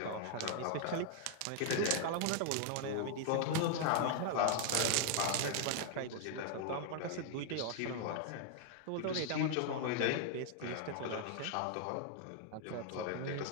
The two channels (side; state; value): both; different; correlation 0.00